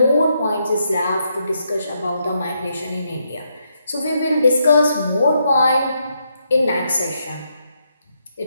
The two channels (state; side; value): inverted; both; correlation -0.79